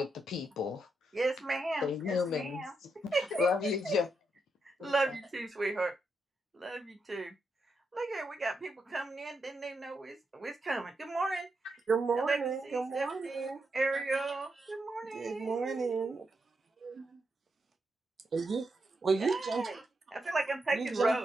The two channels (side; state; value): both; normal; correlation 0.84